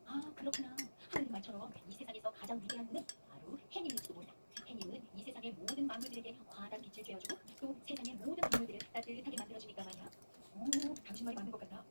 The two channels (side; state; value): both; inverted; correlation -1.00